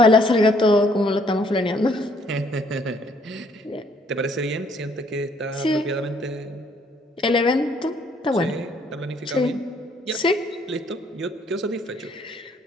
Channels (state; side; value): normal; both; correlation 0.65